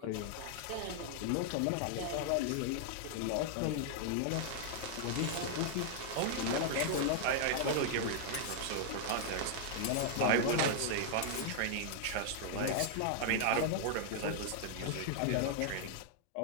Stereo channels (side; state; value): both; different; correlation -0.01